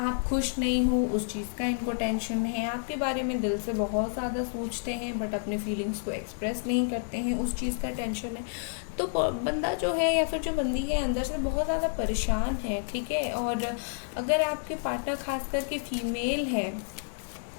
खुश नहीं हो उस चीज़ का इनको टेंशन है, आपके बारे में दिल से बहुत ज़्यादा सोचते हैं बट अपने फीलिंग्स को एक्सप्रेस नहीं करते हैं, उस चीज़ का टेंशन है। तो बंदा जो है या फिर जो बंदी है अंदर से बहुत ज़्यादा परेशान है, ठीक है। और अगर आपके पार्टनर खास करके फीमेल है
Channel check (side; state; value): right; silent; 58 dB below the other